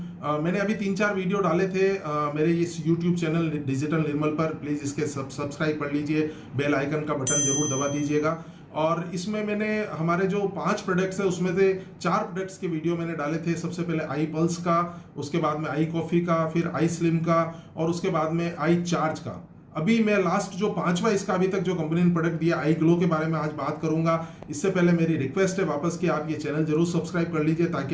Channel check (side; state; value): both; identical; correlation 1.00